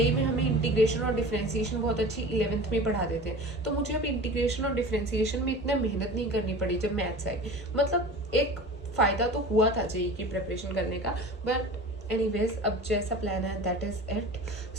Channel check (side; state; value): both; normal; correlation 0.37